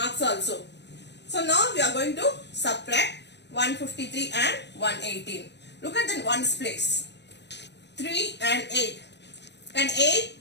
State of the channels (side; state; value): right; late; 0.50 ms